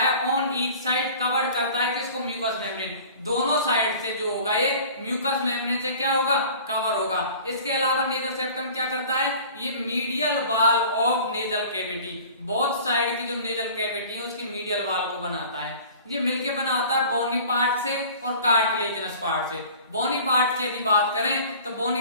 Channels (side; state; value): both; inverted; correlation -0.44